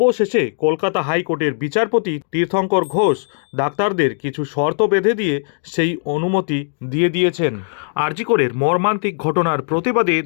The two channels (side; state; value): right; silent; digital silence